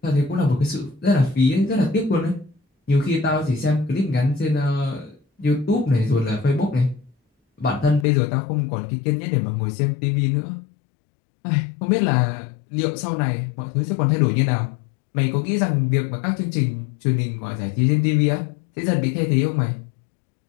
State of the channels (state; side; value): drops out; right; at 8.1 s